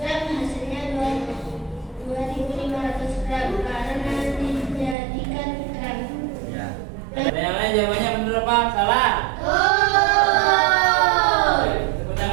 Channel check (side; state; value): left; drops out; at 5.0 s